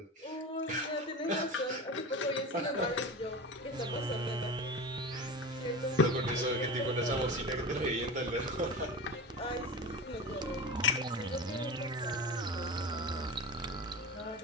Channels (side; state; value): both; normal; correlation 0.29